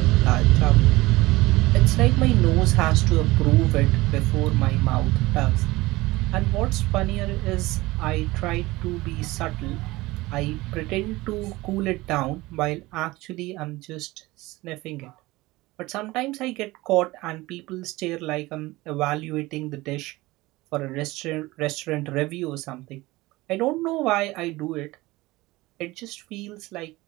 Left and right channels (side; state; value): left; quieter; 20.1 dB